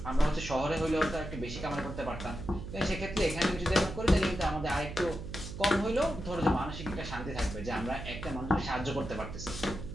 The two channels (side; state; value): right; noise; hum, 8 dB below the sound